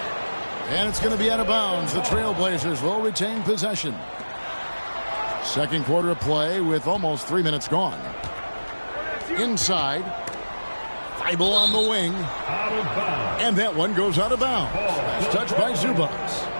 And it's going to be out of bounds. The Trailblazers will retain possession. Second quarter of play with almost 3 minutes gone. Inside. Thibault on the wing. And that one goes out of bounds. Last touch by Zubac.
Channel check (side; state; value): both; inverted; correlation -1.00